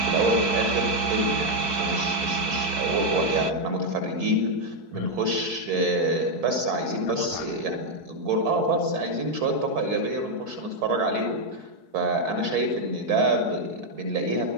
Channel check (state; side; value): late; left; 4.7 ms